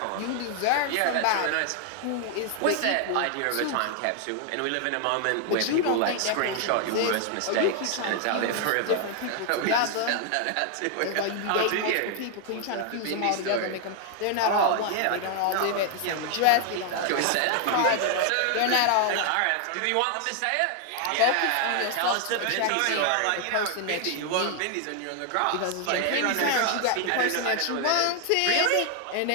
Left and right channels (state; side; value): different; both; correlation 0.00